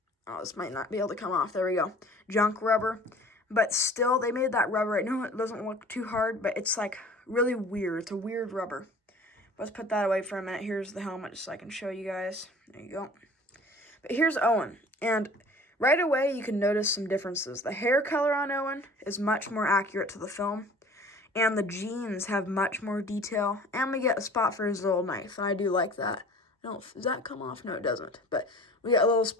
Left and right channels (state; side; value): normal; both; correlation 0.46